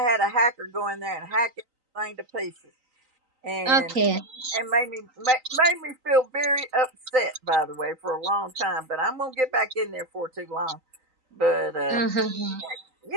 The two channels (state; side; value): late; left; 3.9 ms